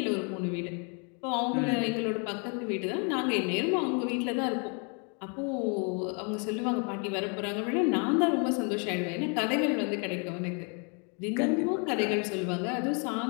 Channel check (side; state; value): right; quieter; 37.1 dB